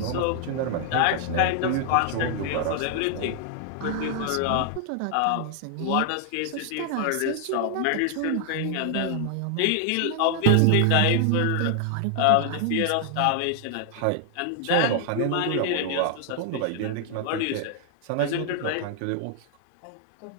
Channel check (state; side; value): different; both; correlation 0.00